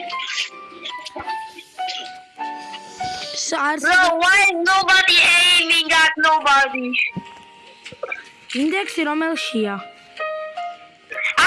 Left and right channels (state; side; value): identical; both; correlation 1.00